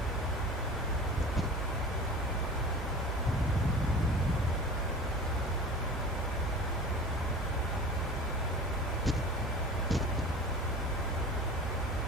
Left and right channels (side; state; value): both; normal; correlation 0.38